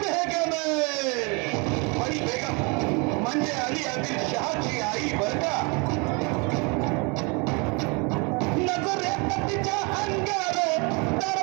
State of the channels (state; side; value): quieter; left; 30.7 dB